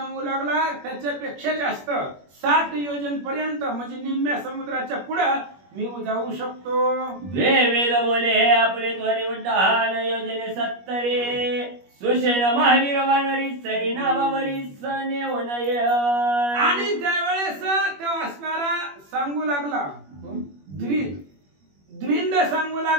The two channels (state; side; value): late; left; 21 ms